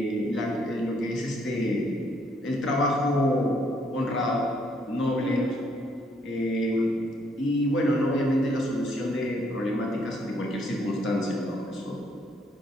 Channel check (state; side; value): normal; both; correlation 0.69